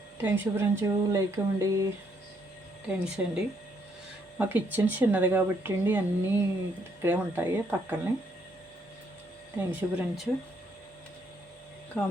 థ్యాంక్స్ ఫ్రెండ్స్, లైక్ ఇవ్వండి. థ్యాంక్స్ అండి. మా కిచెన్ చిన్నది కాబట్టి అండి అన్నీ ఇక్కడే ఉంటాయి పక్కనే. Thanks friends.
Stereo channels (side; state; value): both; normal; correlation 0.71